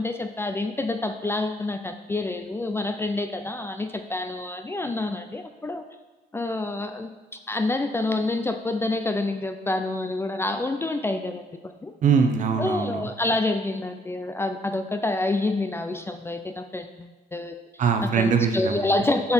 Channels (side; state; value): both; normal; correlation 0.66